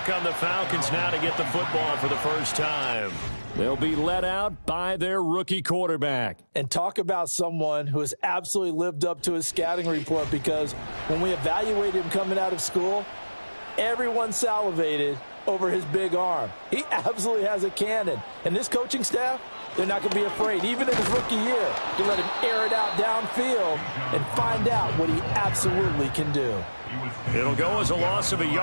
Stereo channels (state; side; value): inverted; both; correlation -1.00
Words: come the Falcons now to get the football for the first time. They'll be led out by their rookie quarterback. And talk about someone who has absolutely lived up to his scouting report, because when we evaluated him coming out of school, everyone salivated over his big arm. He absolutely has a cannon. And this coaching staff, they're not going to be afraid, even in his rookie year, to let him air it out downfield and find out what he absolutely can do. It'll go as a loss of a